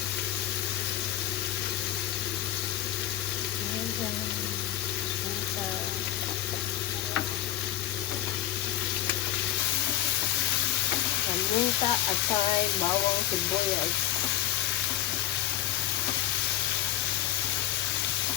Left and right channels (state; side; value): quieter; right; 13.0 dB